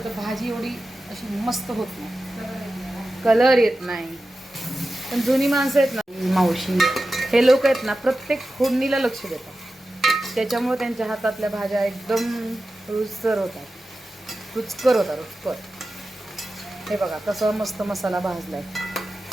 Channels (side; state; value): both; normal; correlation 0.93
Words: भाजी एवढी अशी मस्त होत नाही, कलर येत नाही. पण जुनी माणसं आहेत ना, मावशी, हे लोक आहेत ना, प्रत्येक फोडणीला लक्ष देतात. त्याच्यामुळे त्यांच्या हातातल्या भाज्या एकदम रुचकर होतात. रुचकर. हे बघा कसं मस्त मसाला भाजलाय.